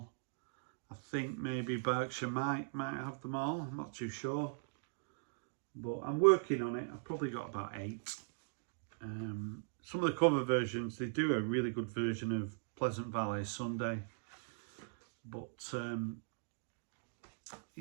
I think maybe Berkshire might have them all. I'm not too sure. But I'm working on it. I've probably got about 8. Some of the cover versions, they do a really good version of Pleasant Valley Sunday. But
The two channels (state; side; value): silent; left; digital silence